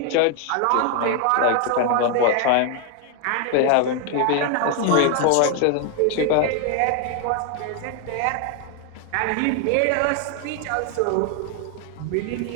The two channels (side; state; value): both; different; correlation 0.01